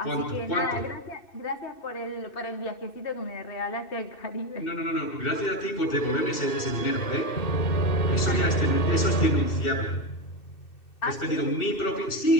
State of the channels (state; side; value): late; right; 2.6 ms